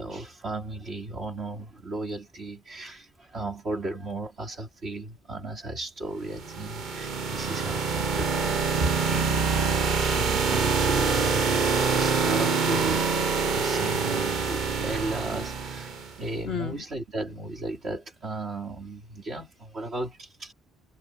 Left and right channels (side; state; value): left; quieter; 4.0 dB